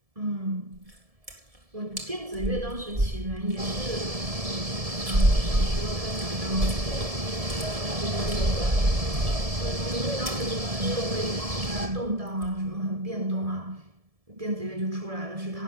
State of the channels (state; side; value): late; left; 1.7 ms